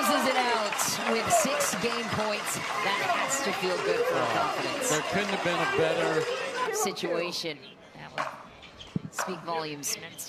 it out with 6 game points. That has to feel good for her confidence. There couldn't have been a better situation. That would speak volumes. Men's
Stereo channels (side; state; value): both; identical; correlation 1.00